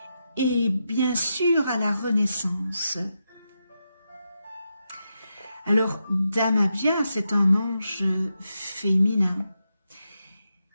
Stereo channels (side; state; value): both; inverted; correlation -0.86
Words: et bien sûr à la renaissance. Alors, d'Amabia, c'est un ange féminin.